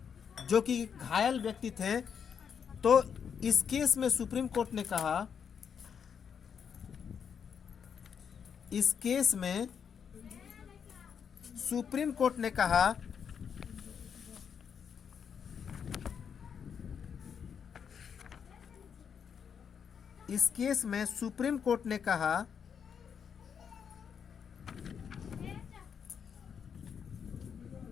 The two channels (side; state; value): right; quieter; 7.2 dB